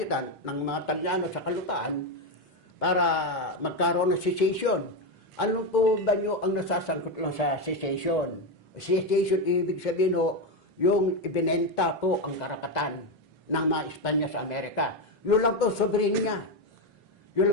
ng mga Talyano sa kalupaan para magkaroon ng secession. Ano po ba nyo ang nasasangkot lang sa secession? Secession, ibig sabihin yung ibinenta po ang karapatan ng mga Espanya sa Amerika. Yun lang po, soberenya. Yun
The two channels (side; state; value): both; normal; correlation 0.09